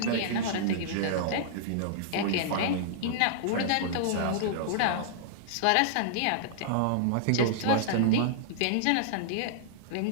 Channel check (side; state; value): both; different; correlation -0.02